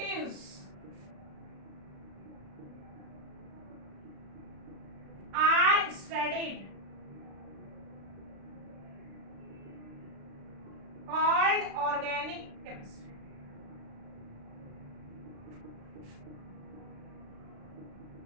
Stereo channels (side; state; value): left; late; 36 ms